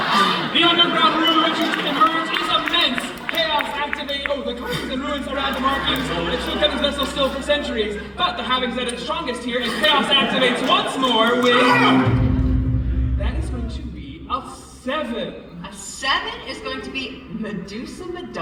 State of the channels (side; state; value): both; identical; correlation 1.00